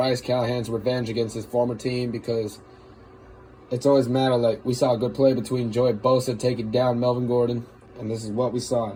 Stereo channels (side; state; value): both; identical; correlation 1.00